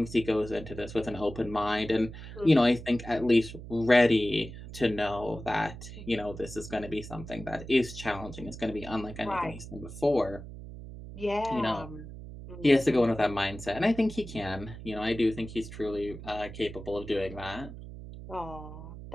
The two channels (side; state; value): right; noise; hum, 12 dB below the sound